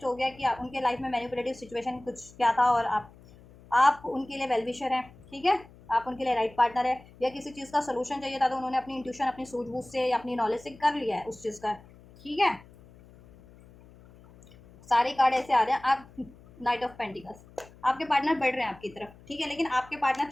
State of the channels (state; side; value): noise; left; hum, 23 dB below the sound